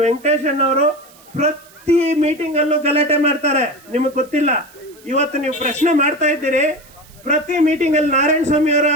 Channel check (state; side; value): noise; right; hiss, 26 dB below the sound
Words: ವೆಂಕಟೇಶಣ್ಣವರು ಪ್ರತಿ ಮೀಟಿಂಗ್ ಅಲ್ಲೂ ಗಲಾಟೆ ಮಾಡ್ತಾರೆ, ನಿಮಗೆ ಗೊತ್ತಿಲ್ಲ. ಇವತ್ತು ನೀವು ಪ್ರಶ್ನೆ ಮಾಡ್ತಾ ಇದ್ದೀರಿ, ಪ್ರತಿ ಮೀಟಿಂಗ್ ಅಲ್ಲಿ ನಾರಾಯಣ ಸ್ವಾಮಿ ಅವರು